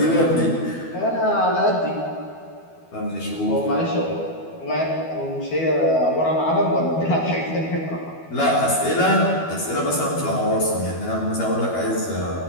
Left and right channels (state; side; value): late; right; 12 ms